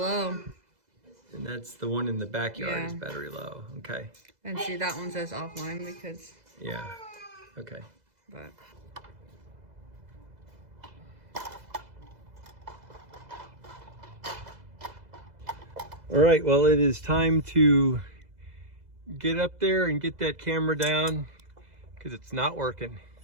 And that's the one in the backyard is Yeah. battery low. Okay. And see, that one says offline because. Yeah. Okay. But. All right. Well, it is time to get up there and get that camera down because it's not working.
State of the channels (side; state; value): left; late; 2.0 ms